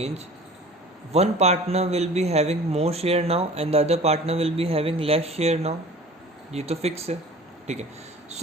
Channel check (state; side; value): normal; both; correlation 0.44